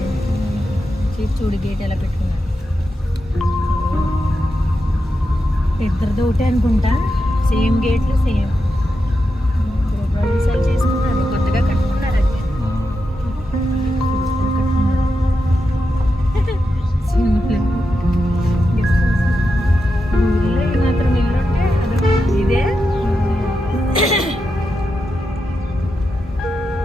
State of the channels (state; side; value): normal; both; correlation 0.88